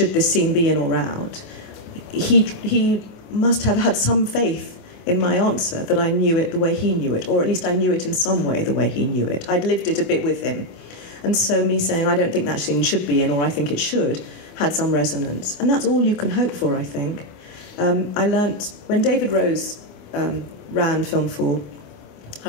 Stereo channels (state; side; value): late; right; 28 ms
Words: this scene be in or out, he must have had some faith in my answer that I knew it the way he knew it, or at least I knew it in some way the way he knew it. I'd lived it a bit with him. And so me saying, I don't think that scene should be in, or I think it should, had some resonance. And that's all you can hope for, I think. I learnt, when David Rose ran Film Fall,